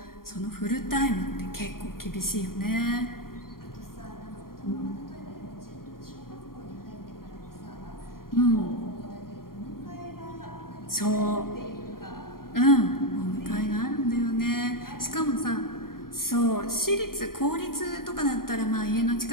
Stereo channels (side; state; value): right; late; 0.92 ms